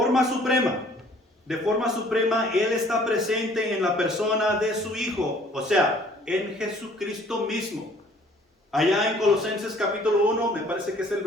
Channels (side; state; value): both; normal; correlation 0.56